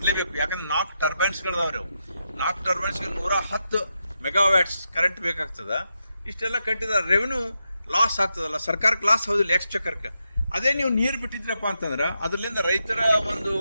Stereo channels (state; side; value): inverted; both; correlation -0.85